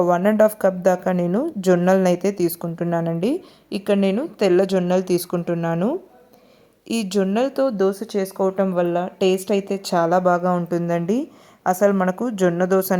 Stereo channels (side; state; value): both; identical; correlation 1.00